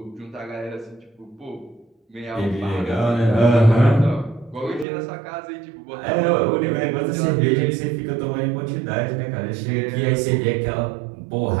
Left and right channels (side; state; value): left; drops out; at 4.9 s